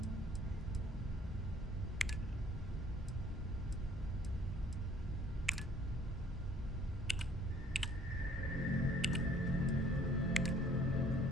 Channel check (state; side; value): normal; both; correlation 0.58